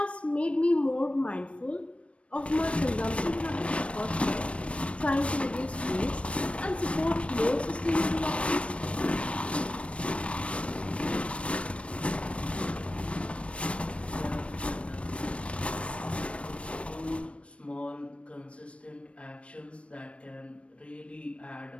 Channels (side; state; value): right; late; 0.061 ms